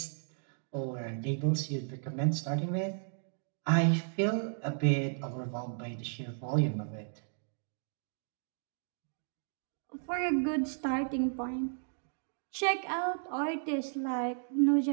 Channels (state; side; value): silent; left; digital silence